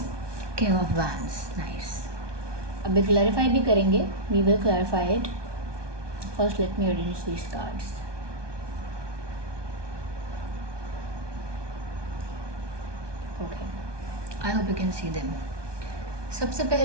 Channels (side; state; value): left; late; 1.2 ms